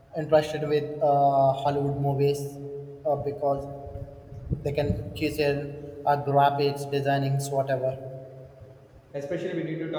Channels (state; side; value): identical; both; correlation 1.00